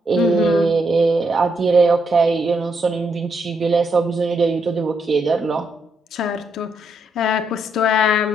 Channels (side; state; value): both; normal; correlation 0.78